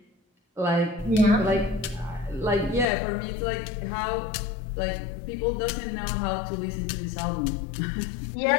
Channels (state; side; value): drops out; right; at 2.9 s